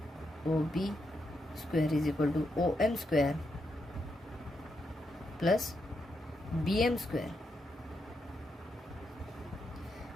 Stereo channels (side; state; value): both; normal; correlation 0.82